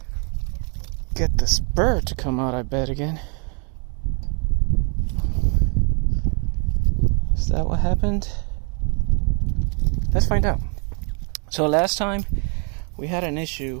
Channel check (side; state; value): left; quieter; 38.5 dB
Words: get the spur to come out, I bet, again. Is that what happened? Let's find out. So last time we had an